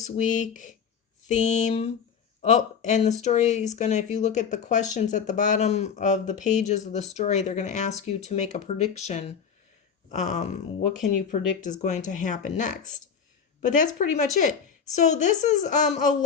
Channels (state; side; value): quieter; right; 6.8 dB